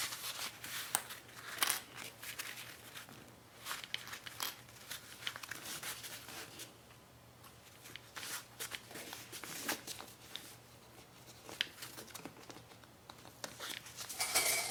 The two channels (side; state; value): both; identical; correlation 1.00